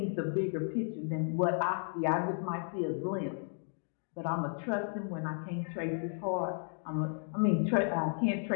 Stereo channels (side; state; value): right; silent; 55 dB below the other